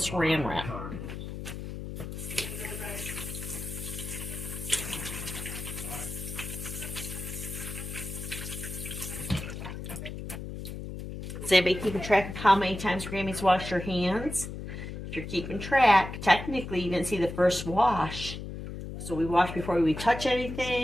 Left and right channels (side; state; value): left; noise; hum, 8 dB below the sound